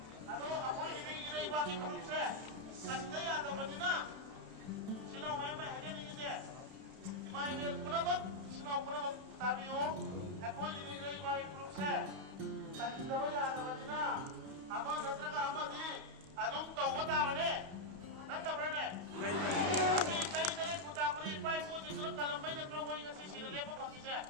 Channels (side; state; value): left; late; 31 ms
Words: anu apa ini bagi grup saya, santai atau bagaimana? Silau main aja ni je. Imai bel puna bak, silau puna bak tapi o, aku ini jadi bagi grup saya. Tapi tahu ya ada bagaimana? Apa nanti apa di? Adum tahu apa mana? Nanti mana? Tapi kaya dari putar putih pai pun jadi kalau main nanti orang yang ngasih sila lepas bagi saya.